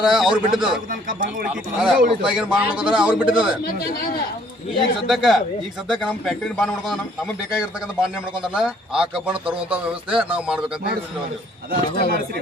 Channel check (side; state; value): both; normal; correlation 0.61